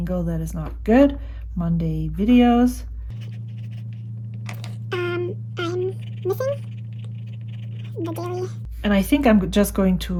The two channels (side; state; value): both; identical; correlation 1.00